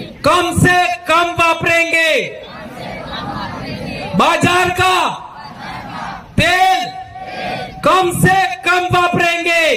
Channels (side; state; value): both; identical; correlation 1.00